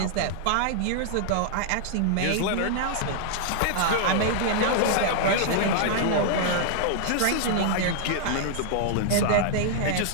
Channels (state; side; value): different; both; correlation -0.01